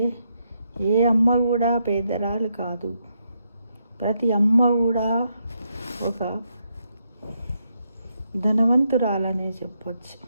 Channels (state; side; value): inverted; both; correlation -0.79